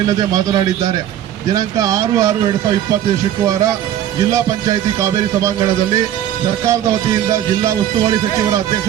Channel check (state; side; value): quieter; left; 11.2 dB